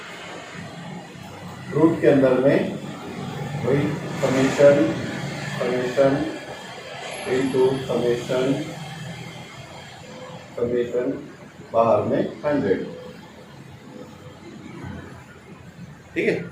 रूट के अंदर में वही समेशन इनटू समेशन बाहर में 100, ठीक है।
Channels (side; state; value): both; identical; correlation 1.00